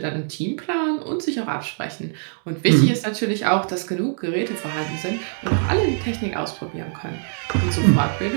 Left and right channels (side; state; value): left; silent; digital silence